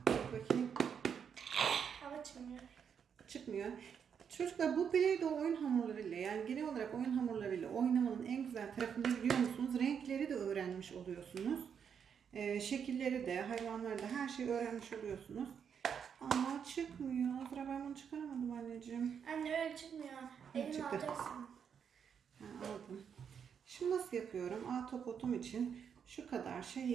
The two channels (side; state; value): left; quieter; 7.4 dB